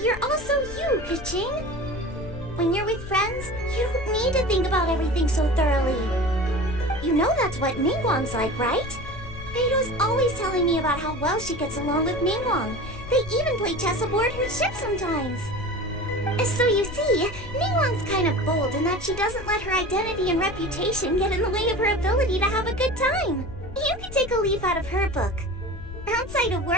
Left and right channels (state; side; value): noise; left; rumble, 12 dB below the sound